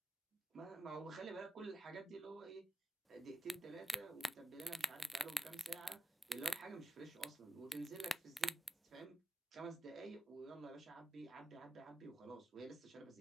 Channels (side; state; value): both; normal; correlation 0.92